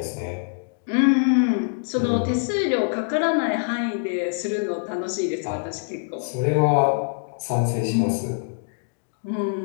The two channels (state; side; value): silent; right; digital silence